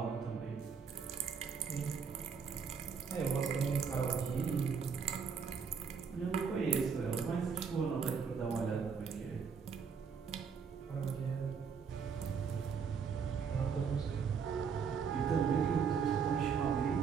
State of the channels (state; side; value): quieter; left; 6.2 dB